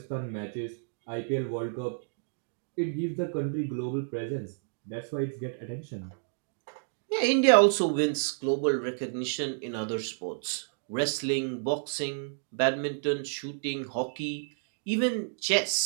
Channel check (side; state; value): left; silent; digital silence